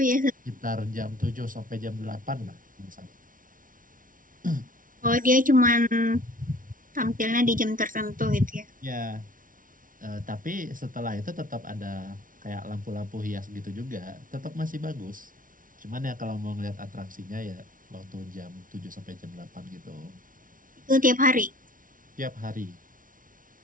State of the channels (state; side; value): late; left; 0.39 ms